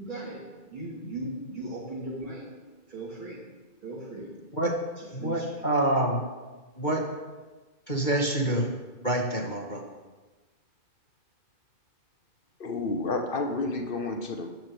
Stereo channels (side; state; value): right; late; 2.2 ms